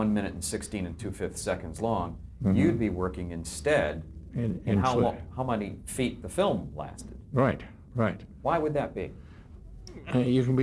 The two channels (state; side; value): identical; both; correlation 1.00